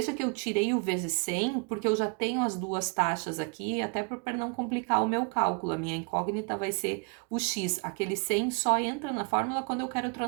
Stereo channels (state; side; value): quieter; left; 36.5 dB